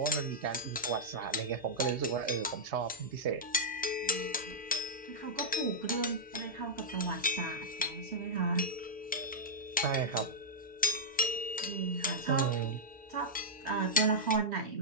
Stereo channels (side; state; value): both; normal; correlation -0.07